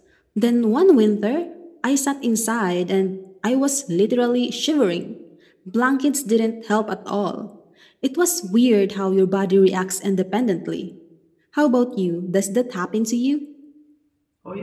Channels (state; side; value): identical; both; correlation 1.00